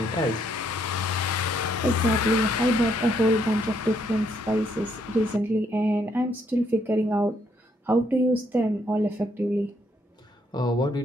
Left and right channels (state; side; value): normal; both; correlation 0.72